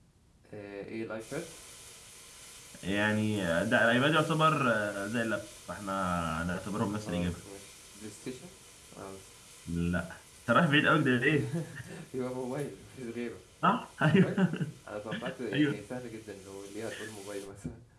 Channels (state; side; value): identical; both; correlation 1.00